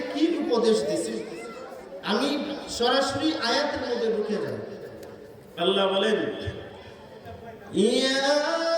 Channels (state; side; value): identical; both; correlation 1.00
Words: কি উপদেশ দিয়েছে, আমি সরাসরি আয়াতের মধ্যে ঢুকে যাই। আল্লাহ বলেন, ইয়া